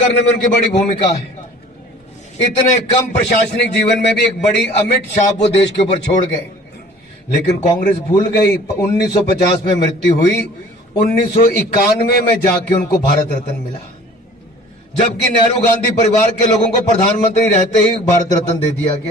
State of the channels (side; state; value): both; normal; correlation 0.48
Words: में उनकी बड़ी भूमिका है। इतने कम प्रशासनिक जीवन में भी एक बड़ी अमिट छाप वो देश के ऊपर छोड़ गए, लेकिन कांग्रेस भूल गई। 1950 में मृत्यु हुई, 1991 में जाके उनको भारत रत्न मिला, जबकि नेहरू गांधी परिवार के लोगों को प्रधानमंत्री रहते ही भारत रत्न दे दिया